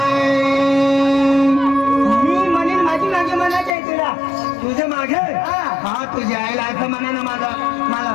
मी म्हणेन माझी मागे म्हणायचं आहे तुला. तुझ्या मागे हा. हा तुझ्या आईला असं म्हणा ना माझा मला.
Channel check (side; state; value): right; drops out; at 3.8 s